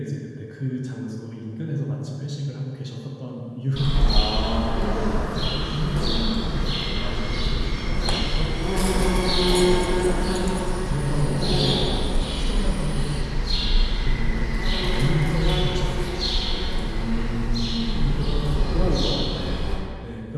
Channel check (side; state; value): both; identical; correlation 1.00